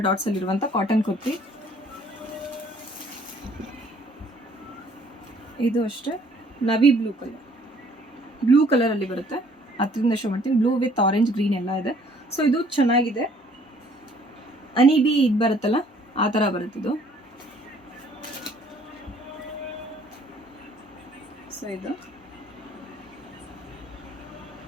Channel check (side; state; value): both; normal; correlation 0.60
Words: dots ಅಲ್ಲಿರುವಂಥ ಕಾಟನ್ ಕುರ್ತಿ. ಇದು ಅಷ್ಟೇ ನವಿ ಬ್ಲೂ ಕಲರಲ್ಲಿ ಬರುತ್ತೆ. ಹತ್ತರಿಂದ ಶೋ ಮಾಡ್ತೀನಿ. ಬ್ಲೂ ವಿತ್ ಆರೆಂಜ್ ಗ್ರೀನ್ ಎಲ್ಲ ಇದೆ. ಸೊ ಇದು ಚೆನ್ನಾಗಿದೆ. ಅನಿಬಿ ಇದು ಬರುತ್ತಲ್ಲ ಆ ಥರ ಬರುತ್ತಿದ್ದು. ಸೊ ಇದು